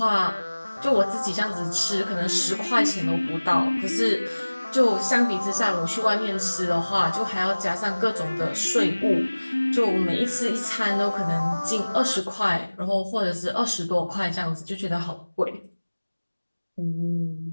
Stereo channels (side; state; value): both; inverted; correlation -1.00